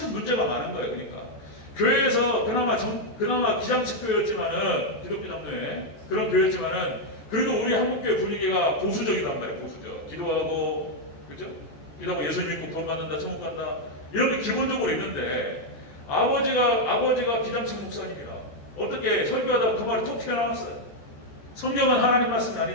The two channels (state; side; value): late; right; 14 ms